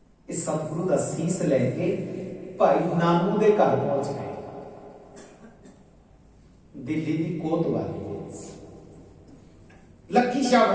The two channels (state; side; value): identical; both; correlation 1.00